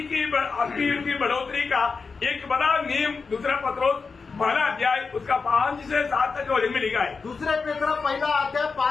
की आत्मीय जीवन की बढ़ोतरी का एक बड़ा नियम दूसरा पत्रोस 12 अध्याय उसका 5 से 7 तक वचन में लिखा है। दुसरे पेत्र 1 अध्याय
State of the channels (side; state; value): right; quieter; 4.8 dB